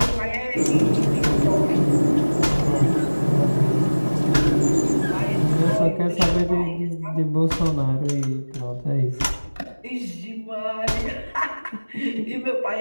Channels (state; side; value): inverted; both; correlation -1.00